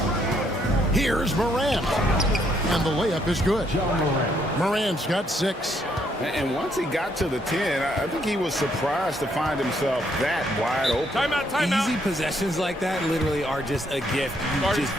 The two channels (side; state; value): both; normal; correlation 0.71